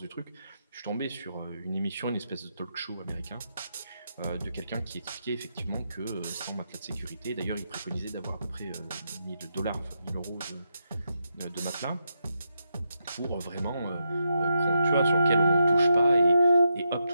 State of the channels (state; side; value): inverted; both; correlation -0.84